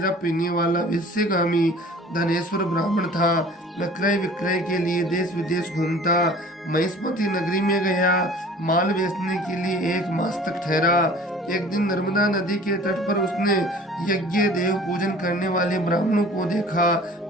पीने वाला, विषयगामी धनेश्वर ब्राह्मण था। वह क्रय विक्रय के लिए देश विदेश घूमता। महिष्मती नगरी में गया, माल बेचने के लिए 1 मास तक ठहरा। एक दिन नर्मदा नदी के तट पर उसने यज्ञ देव पूजन करने वाले ब्राह्मणों को देखा।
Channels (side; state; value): both; normal; correlation 0.46